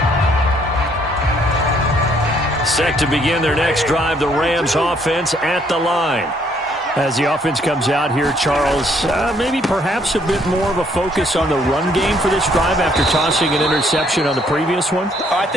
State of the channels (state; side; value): normal; both; correlation 0.67